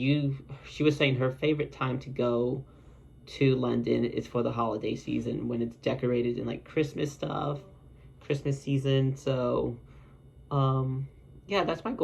was saying her favorite time to go to London is for the holiday season when it's decorated in like Christmas stuff, Christmas season. So, yeah, that's my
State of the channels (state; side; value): identical; both; correlation 1.00